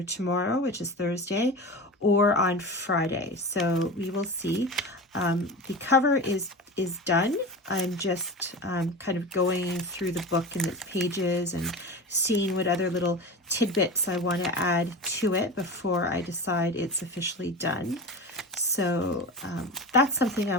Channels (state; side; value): normal; both; correlation 0.28